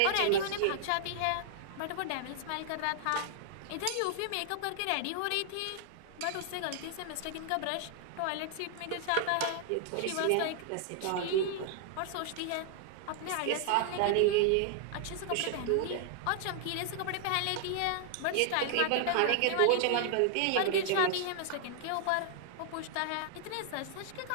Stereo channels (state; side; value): different; both; correlation 0.00